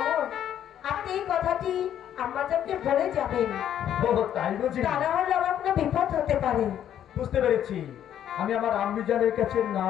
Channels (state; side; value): quieter; right; 10.3 dB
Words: আপনি এই কথাটি আম্মা জানকে বলে যাবেন। তাই বুঝি? তা না হলে আমার কোনো বিপদ হতে পারে। বুঝতে পেরেছি। আমি আমার আম্মি জানের কাছে না